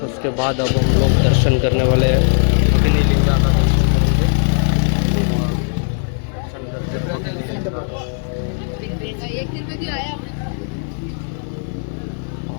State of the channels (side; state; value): right; silent; 67 dB below the other